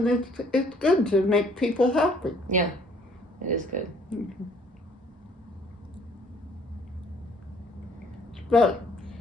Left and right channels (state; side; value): normal; both; correlation 0.60